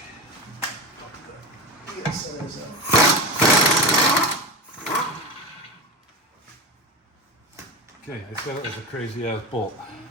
Yes, that is Okay, I said it was a crazy ass bolt.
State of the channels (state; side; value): normal; both; correlation 0.23